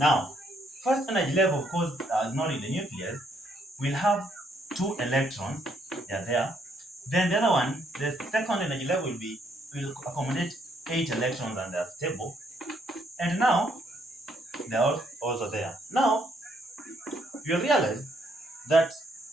first energy level, of course, ignoring the nucleus, will have 2 electrons. They are there. Then the other one, the second energy level will accommodate 8 electrons and they are stable. And now they are also there. Now you realize that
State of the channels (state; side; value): normal; both; correlation 0.71